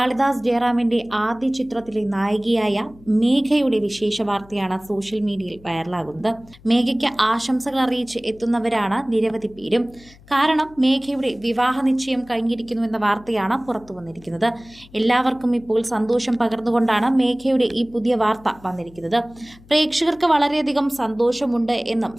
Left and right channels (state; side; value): noise; left; hum, 24 dB below the sound